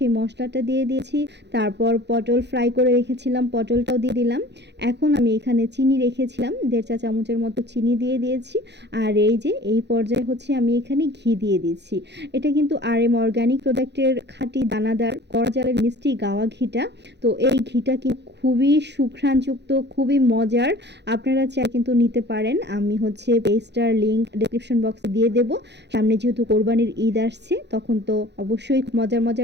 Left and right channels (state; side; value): late; left; 0.50 ms